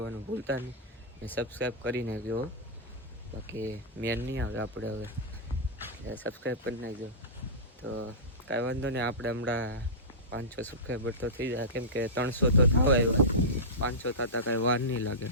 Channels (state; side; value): normal; both; correlation -0.16